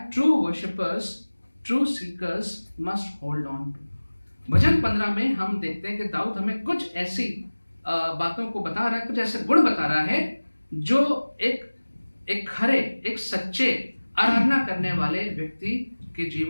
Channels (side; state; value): both; inverted; correlation -1.00